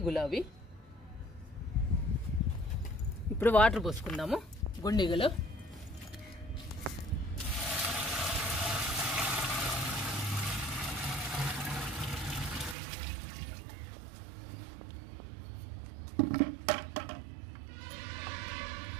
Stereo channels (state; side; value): drops out; left; at 12.8 s